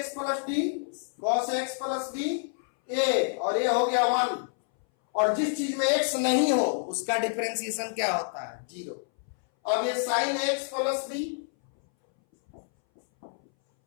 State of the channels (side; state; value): right; silent; 59 dB below the other